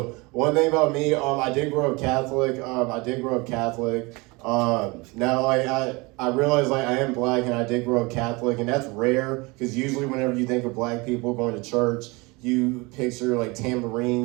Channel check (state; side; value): quieter; left; 25.6 dB